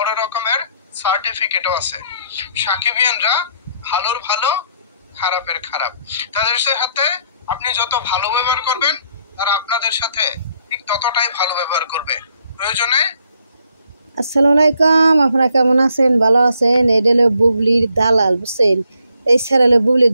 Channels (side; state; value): both; inverted; correlation -0.70